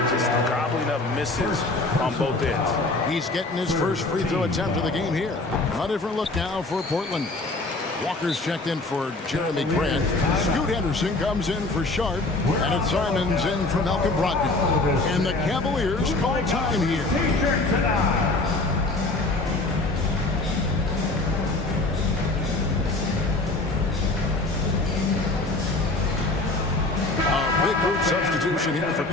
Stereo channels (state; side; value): quieter; right; 3.1 dB